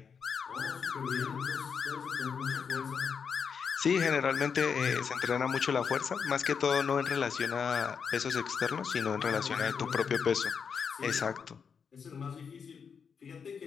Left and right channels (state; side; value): quieter; right; 6.4 dB